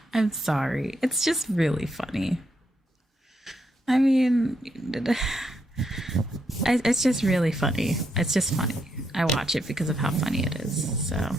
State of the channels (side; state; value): both; normal; correlation 0.78